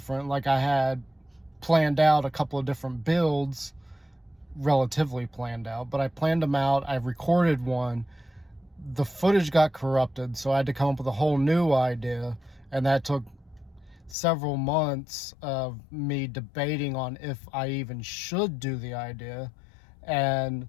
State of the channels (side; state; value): right; drops out; at 14.2 s